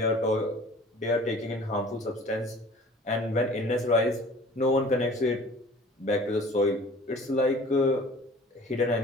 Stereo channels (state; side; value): normal; both; correlation 0.46